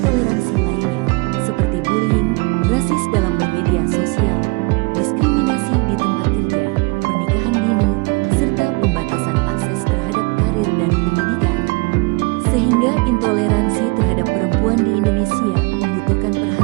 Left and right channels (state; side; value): quieter; left; 28.2 dB